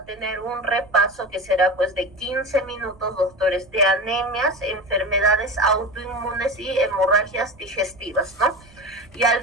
tener un repaso que será pues de 15 minutos, doctores, de anemias, enfermedades autoinmunes y hemorragias digestivas, ¿no? Y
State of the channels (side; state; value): right; noise; rumble, 25 dB below the sound